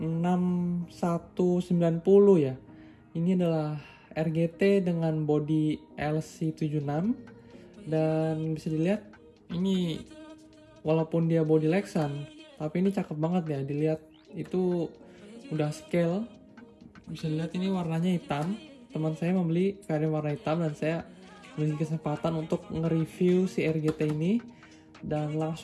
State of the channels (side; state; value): both; identical; correlation 1.00